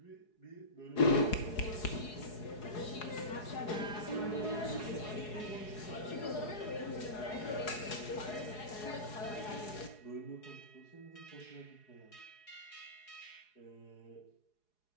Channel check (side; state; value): right; late; 4.8 ms